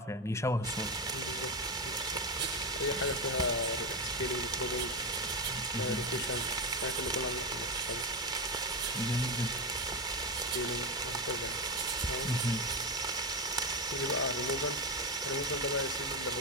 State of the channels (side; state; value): both; normal; correlation 0.13